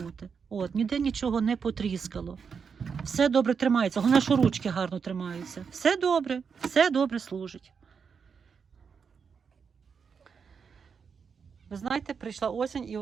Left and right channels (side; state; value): left; quieter; 6.1 dB